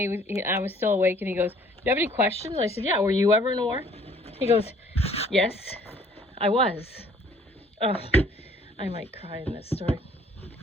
I was still awake, and he goes, "Do you have any questions?" I said, "Yeah, were you ever in a war?" He goes, "Yes, I was." I might cry in this story.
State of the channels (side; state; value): both; normal; correlation 0.58